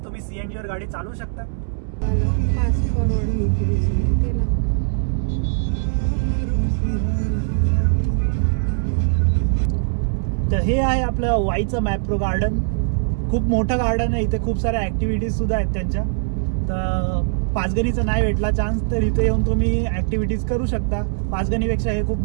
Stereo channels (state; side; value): silent; left; 65 dB below the other